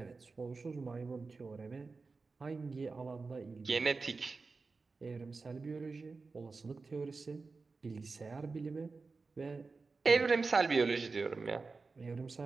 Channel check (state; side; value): quieter; left; 4.1 dB